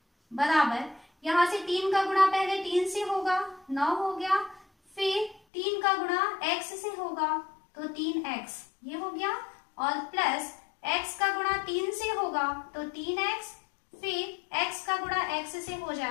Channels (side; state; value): right; drops out; at 5.4 s